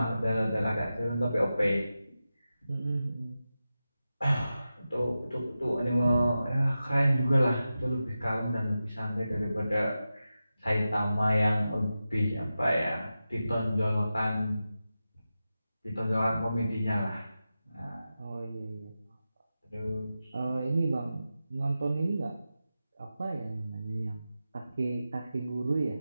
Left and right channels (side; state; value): both; inverted; correlation -0.92